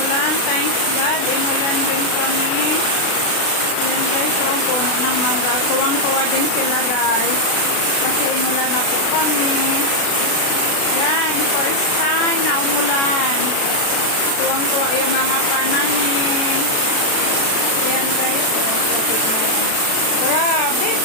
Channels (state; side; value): late; right; 36 ms